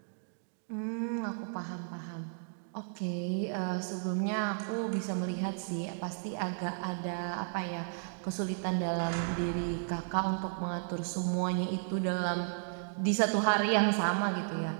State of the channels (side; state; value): left; silent; digital silence